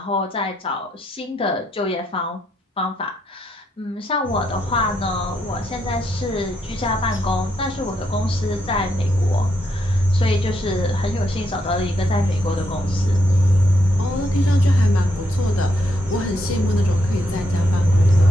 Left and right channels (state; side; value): normal; both; correlation 0.78